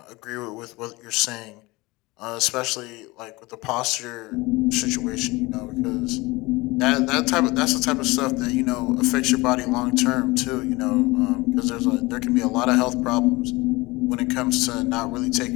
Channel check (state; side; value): quieter; right; 22.3 dB